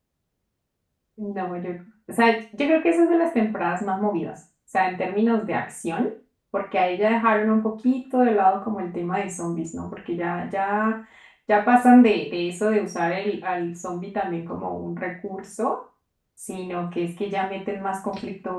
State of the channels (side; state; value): both; identical; correlation 1.00